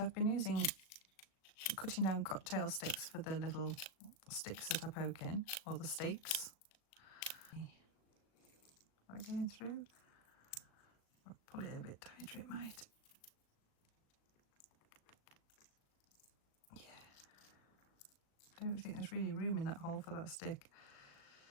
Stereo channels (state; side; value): late; right; 37 ms